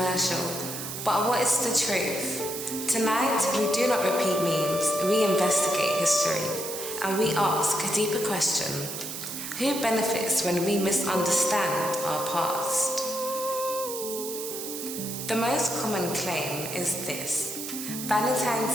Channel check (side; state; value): right; noise; hiss, 7 dB below the sound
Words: But what is the truth? Tonight, we do not repeat memes, we investigate history, and we ask a deeper question. Who benefits when we misunderstand our past? The most common claim is this.